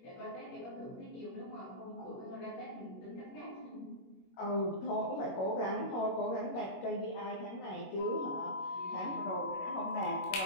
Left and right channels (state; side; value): late; right; 21 ms